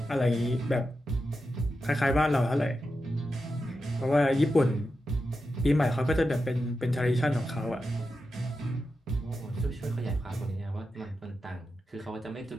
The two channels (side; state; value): both; normal; correlation 0.89